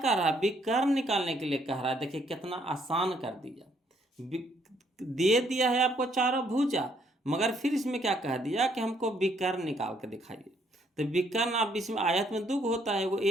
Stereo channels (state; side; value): normal; both; correlation 0.68